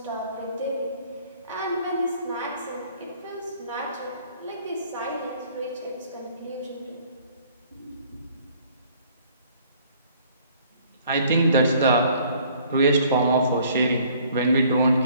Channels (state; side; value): inverted; both; correlation -0.58